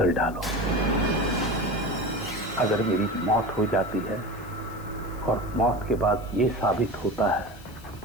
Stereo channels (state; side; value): noise; left; hiss, 23 dB below the sound